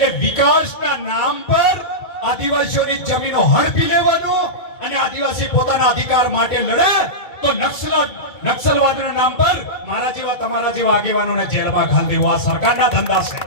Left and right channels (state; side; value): late; right; 2.8 ms